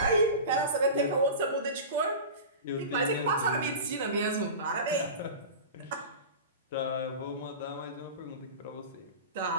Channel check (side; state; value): both; inverted; correlation -0.31